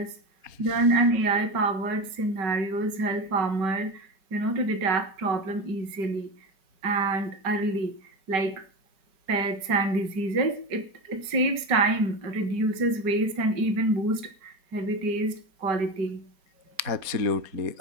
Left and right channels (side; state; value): left; late; 5.2 ms